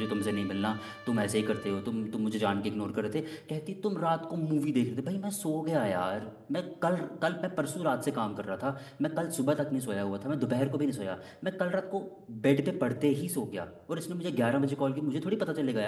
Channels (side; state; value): both; identical; correlation 1.00